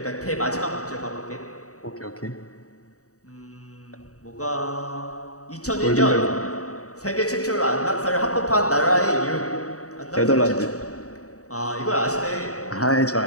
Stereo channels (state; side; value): late; right; 0.66 ms